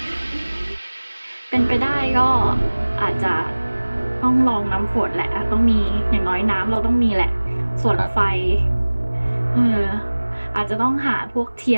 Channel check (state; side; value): inverted; both; correlation -1.00